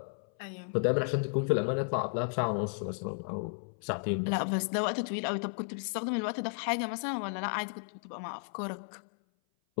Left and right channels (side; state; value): right; silent; 55 dB below the other